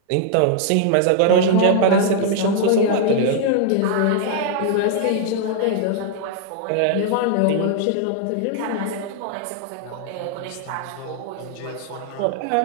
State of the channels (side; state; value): both; different; correlation 0.00